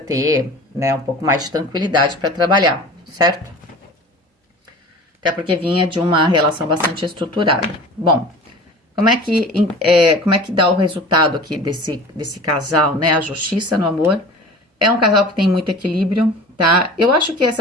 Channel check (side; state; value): both; normal; correlation 0.39